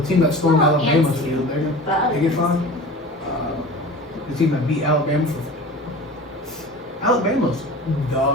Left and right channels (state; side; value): normal; both; correlation 0.37